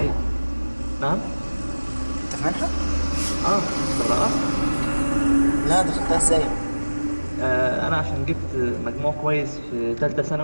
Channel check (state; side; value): inverted; both; correlation -1.00